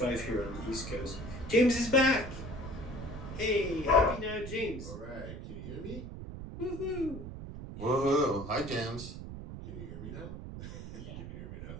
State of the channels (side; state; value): right; noise; rumble, 9 dB below the sound